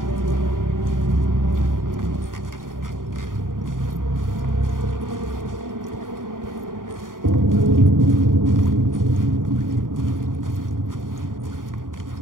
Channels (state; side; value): late; left; 0.90 ms